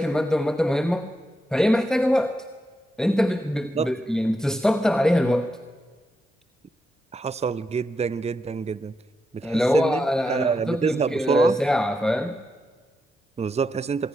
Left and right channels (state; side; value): normal; both; correlation 0.85